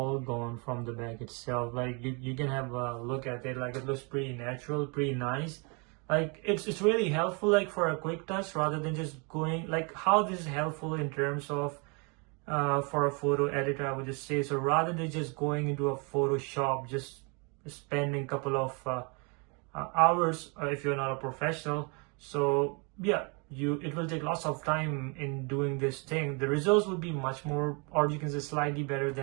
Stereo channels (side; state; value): left; quieter; 32.8 dB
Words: gone from the back itself. Like you can have a look at it, like it looks pretty natural, pretty nice. Like it's really helpful like for a quick touch rather than just going like how this is helpful in terms of for a photo editor, I would just say. So rather than just going into a Photoshop, just spending a couple of hours if you're not a professional. So yeah, it will take lots of time in doing this thing. The results will be much more, or you can say slightly better